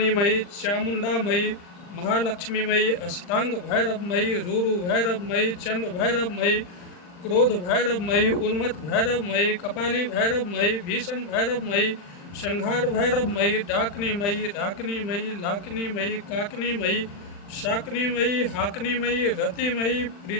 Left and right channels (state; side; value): late; right; 40 ms